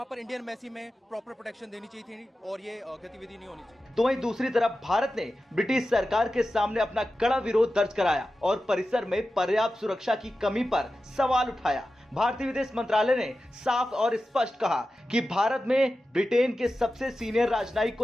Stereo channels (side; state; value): both; normal; correlation 0.93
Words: पर इंडियन एम्बेसी में प्रॉपर प्रोटेक्शन देनी चाहिए थी और ये गतिविधि नहीं होनी चाहिए। तो वहीं दूसरी तरफ भारत ने ब्रिटिश सरकार के सामने अपना कड़ा विरोध दर्ज कराया और परिसर में पर्याप्त सुरक्षा की कमी पर सवाल उठाया। भारतीय विदेश मंत्रालय ने साफ और स्पष्ट कहा कि भारत में ब्रिटेन के सबसे सीनियर राजनयिक